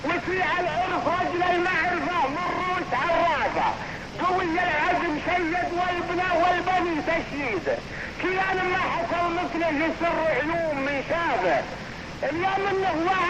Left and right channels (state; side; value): identical; both; correlation 1.00